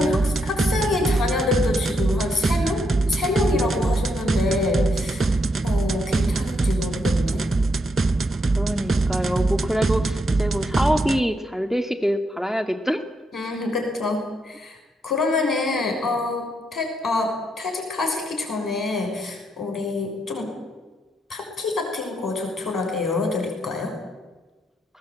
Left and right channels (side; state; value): both; normal; correlation 0.79